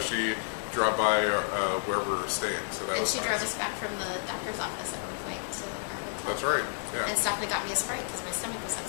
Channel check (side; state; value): right; silent; digital silence